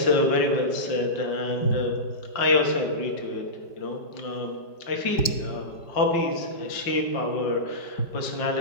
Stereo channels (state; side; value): late; right; 5.0 ms